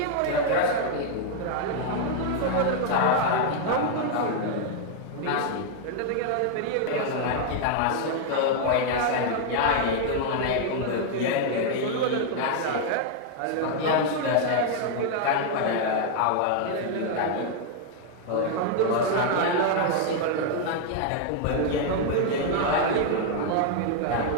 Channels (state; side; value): different; both; correlation 0.00